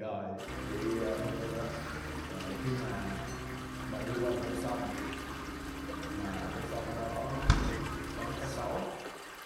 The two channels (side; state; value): both; identical; correlation 1.00